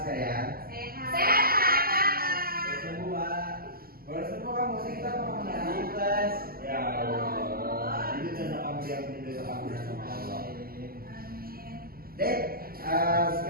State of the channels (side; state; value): left; late; 0.43 ms